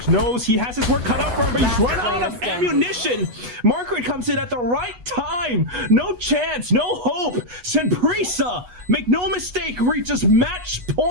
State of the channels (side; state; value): left; late; 8.3 ms